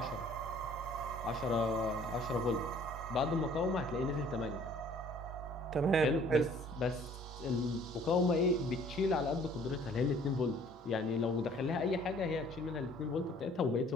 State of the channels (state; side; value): normal; both; correlation 0.55